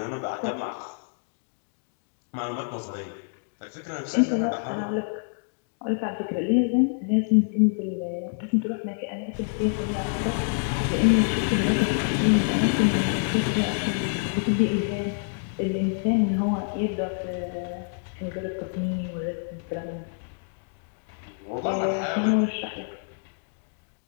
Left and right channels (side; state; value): right; silent; digital silence